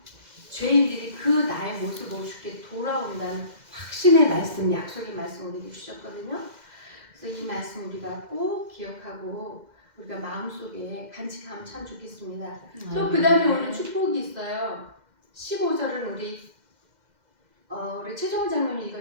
죄인들이 그 나의 모습으로 주께 돌아온다는 확신의 말씀, 약속의 말씀을 우리에게 주셨거든요. 그래서 이 말씀 우리가 꼭 기억하고 우리가 마음속에 간직하면 참 좋겠습니다. 또 그 다음에 오늘 축복이 있어요. 15절은 우리 최종훈 장로님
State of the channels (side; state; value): left; late; 2.0 ms